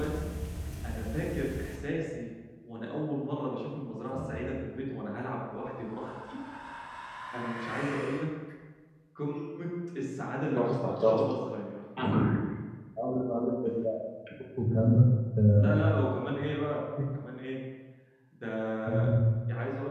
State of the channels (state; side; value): identical; both; correlation 1.00